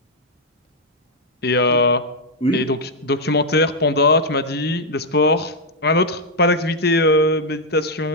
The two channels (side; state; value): both; normal; correlation -0.01